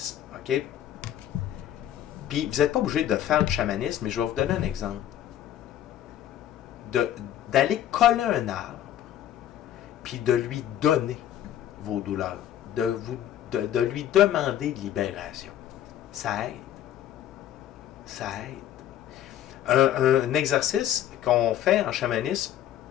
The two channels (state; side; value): quieter; right; 11.3 dB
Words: OK? Puis, vous n'êtes pas obligé de faire du chamanisme, mais je vais vous donner un exemple. D'aller coller un arbre, puis de lui donner vos douleurs, de lui demander de libération. Ça aide. Ça aide. Un exercice qu'on fait en chamanisme,